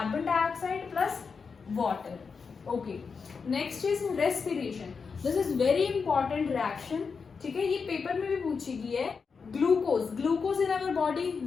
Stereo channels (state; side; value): quieter; right; 5.4 dB